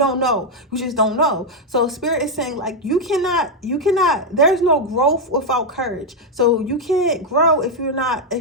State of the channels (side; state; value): both; normal; correlation 0.02